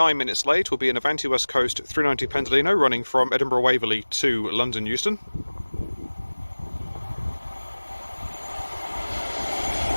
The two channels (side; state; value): both; inverted; correlation -1.00